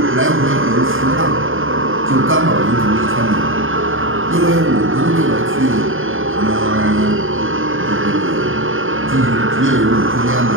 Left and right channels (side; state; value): left; late; 0.59 ms